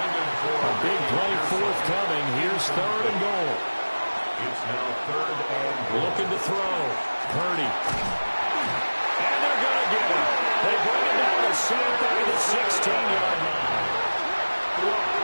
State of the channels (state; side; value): inverted; both; correlation -1.00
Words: for a big play forthcoming. Here's 3rd and goal. It's now 3rd and goal. Looking to throw. Purdy. And they're going to get him. They bring it down to center back at the 16-yard line.